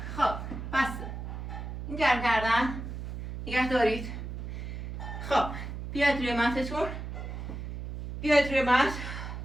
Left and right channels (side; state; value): right; noise; hum, 7 dB below the sound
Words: خب بسه. این گرم کردن نگه دارید. خب بیاید روی متتون. بیاید روی مت.